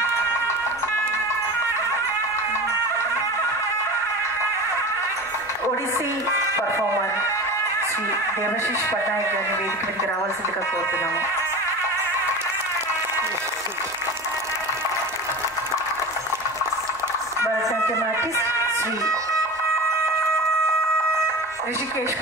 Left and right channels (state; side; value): normal; both; correlation 0.31